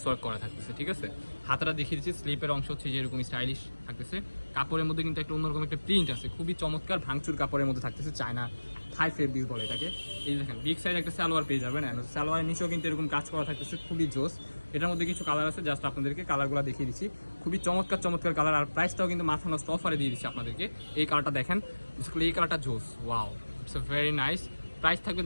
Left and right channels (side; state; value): both; inverted; correlation -1.00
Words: ওয়ার্ক করা থাকতেছে, ঠিক আছে। হাতাটা দেখিয়ে দিচ্ছি, স্লিপের অংশ হচ্ছে যে এরকম স্টাইলিশ থাকতেছে। কাপড়ের মধ্যে কিন্তু একটা অন্যরকম একটা প্রিন্ট আছে, খুবই চমৎকার ভাঙচুর কাপড়ের মধ্যে থাকতেছে। চায়না থাই ফেব্রিক বলে এটাকে। এই দেখেন বিগ সাইজ একটা সালোয়ার পেয়ে যাবেন, সালোয়ারের নিচেও কিন্তু এরকম কাজ করা থাকতেছে, খুবই জোস। এটার মধ্যে কিছু কালার আছে, জাস্ট আপনাদেরকে কালারগুলো দেখিয়ে দিচ্ছি। খুবই চমৎকার চমৎকার কালার, আর প্রাইসটাও কিন্তু মাথা নষ্ট অফারে দিয়ে দিচ্ছি আপনাদেরকে। এই কালারটা দেখেন, এই কালারটা জোস, wow, it's a very nice. Price থাকবে